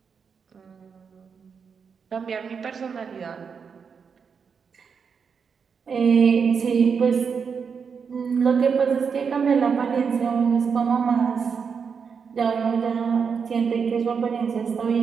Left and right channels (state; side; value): quieter; left; 6.1 dB